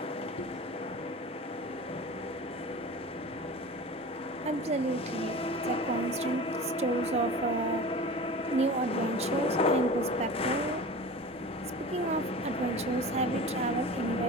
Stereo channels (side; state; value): both; normal; correlation 0.35